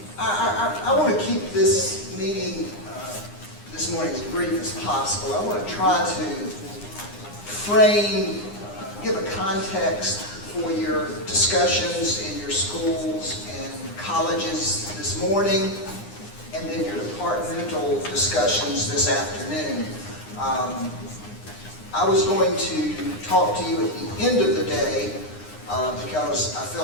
I want to keep this meeting this morning as brief as possible. I want to try to frame, give a context for your discussions in your schools and colleges this morning, and then your departmental discussions this afternoon. I was going to talk to you at the end of the day because I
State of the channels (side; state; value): right; late; 9.8 ms